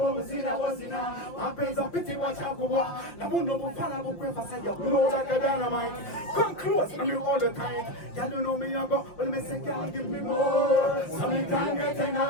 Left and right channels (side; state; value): right; late; 5.7 ms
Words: was in a was in a. My pays a pity watch out for what. The moon no bufala will pray for say you blow like a dynamite. Come close, and you all the time. Y'all don't know me, you go. Well, me say, girl, give me more. So me can't get